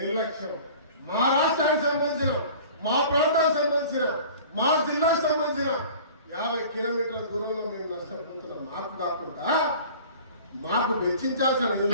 మా రాష్ట్రానికి సంబంధించిన, మా ప్రాంతానికి సంబంధించిన, మా జిల్లాకు సంబంధించిన 50 కిలోమీటర్ల దూరంలో మేము నష్టపోతున్నాం. మాకు కాకుండా మాకు వెచ్చించాల్సిన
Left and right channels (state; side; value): inverted; both; correlation -0.44